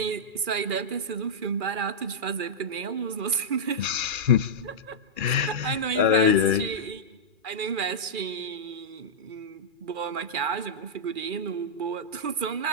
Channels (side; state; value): left; late; 2.4 ms